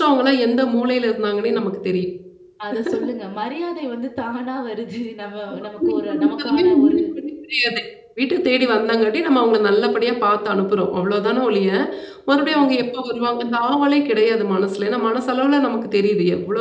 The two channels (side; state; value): both; identical; correlation 1.00